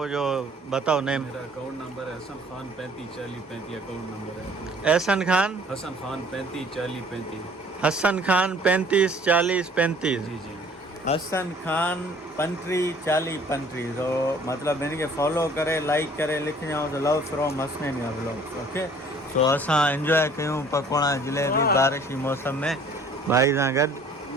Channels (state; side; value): normal; both; correlation 0.54